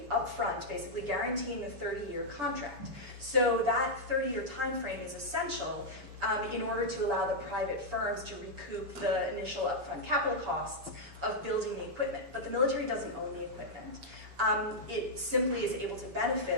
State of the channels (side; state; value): left; late; 7.0 ms